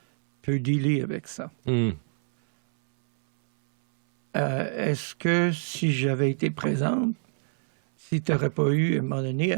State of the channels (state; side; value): silent; left; 60 dB below the other